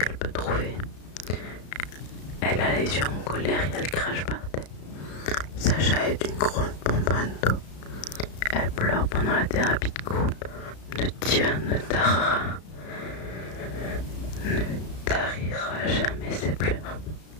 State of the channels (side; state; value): right; late; 33 ms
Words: peut trouver. Elle a les yeux en colère et elle crache par terre. Sacha est une grosse bonbonne d'eau. Elle pleure pendant la thérapie de groupe. Ne tarira jamais ses pleurs.